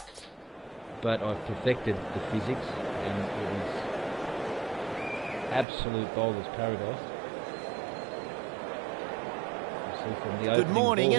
But I've perfected the physics, and it is absolute bowler's paradise. Good morning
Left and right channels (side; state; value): left; drops out; at 5.7 s